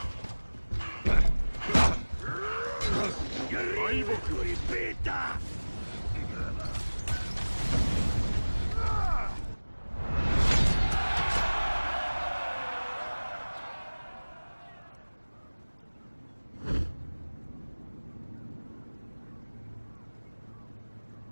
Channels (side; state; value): both; inverted; correlation -1.00